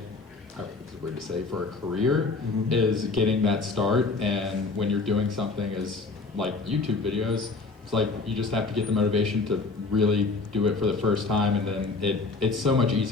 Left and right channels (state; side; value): quieter; right; 3.9 dB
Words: it's weird to say, for a career, is getting that start. And when you're doing something as like YouTube videos, it's like you just have to get the motivation to really do it for the first time, and then it's so much